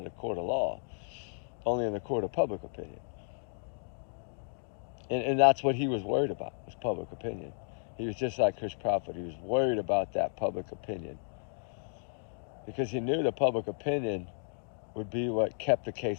the court of law, only in the court of public opinion. And that's what he was worried about, was public opinion. He was just like Chris Prophet. He was worried about that public opinion because he knew the public opinion would be what kept the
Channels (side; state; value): right; silent; digital silence